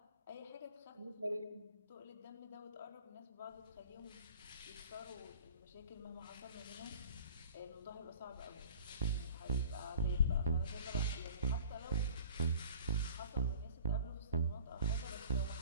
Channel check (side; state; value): both; inverted; correlation -0.46